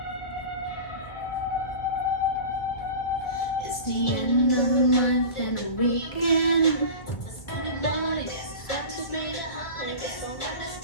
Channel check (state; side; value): late; right; 1.4 ms